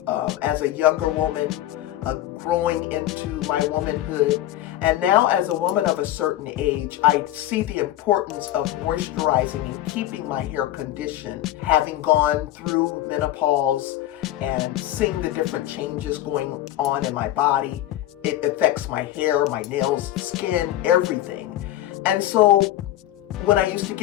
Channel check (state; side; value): quieter; right; 13.8 dB